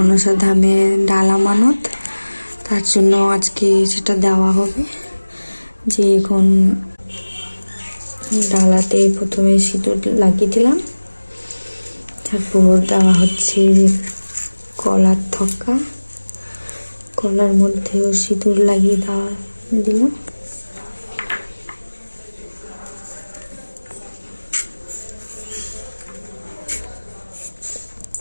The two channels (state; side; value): inverted; both; correlation -1.00